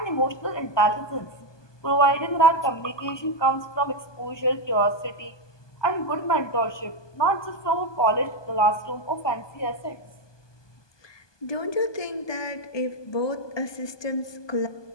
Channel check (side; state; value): right; late; 1.2 ms